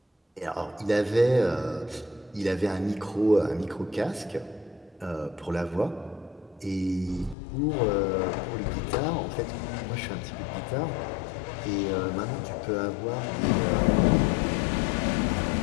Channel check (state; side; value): drops out; right; at 7.4 s